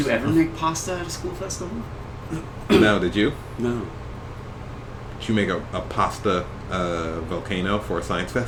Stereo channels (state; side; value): identical; both; correlation 1.00